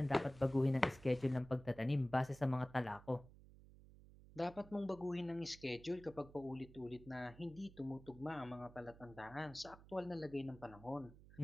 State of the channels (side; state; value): right; noise; hum, 20 dB below the sound